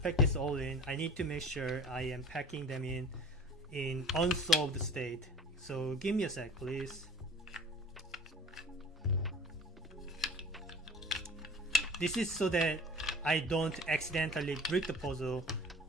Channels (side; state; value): both; normal; correlation 0.43